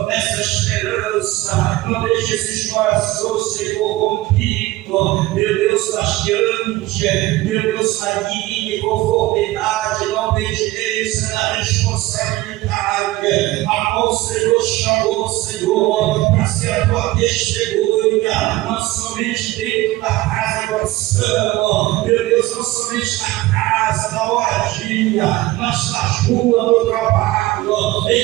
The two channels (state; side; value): quieter; left; 18.1 dB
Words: essa esperança, não deixe esses corações, Senhor, rompidos, meu Deus, taxeante, meu Deus, na linha, conformidade, na obediência, na responsabilidade, a qual o Senhor chamou, Senhor, para ser a tua testemunha, não somente dentro da casa do oração, meu Deus, não somente na casa, na moradia, mas nas ruas do trabalho,